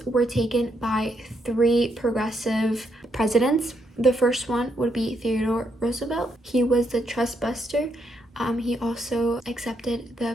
were taken by three progressive presidents. The first one would be Theodore Roosevelt. He was the trust buster. He also accepted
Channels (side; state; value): both; normal; correlation 0.77